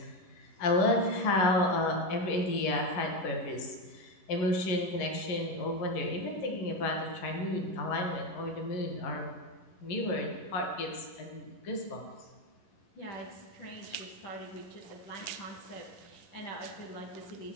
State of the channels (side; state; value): right; late; 11 ms